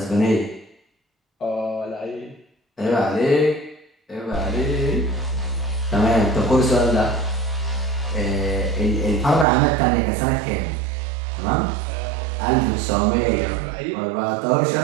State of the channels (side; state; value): left; drops out; at 9.5 s